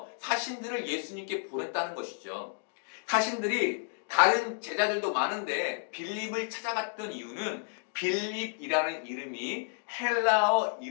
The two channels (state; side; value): silent; right; digital silence